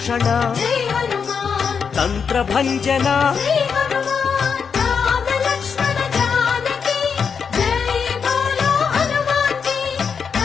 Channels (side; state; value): right; quieter; 6.3 dB